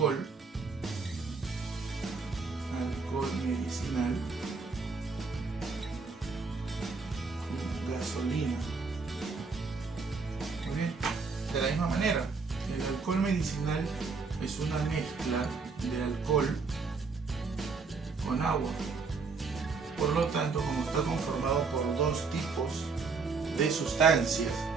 medicinal y gasolina. Muy bien. De la misma manera, el alcohol medicinal es una mezcla de alcohol con agua. Por lo tanto, como está conformado por dos tipos de sustancias,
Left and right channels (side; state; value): left; quieter; 4.6 dB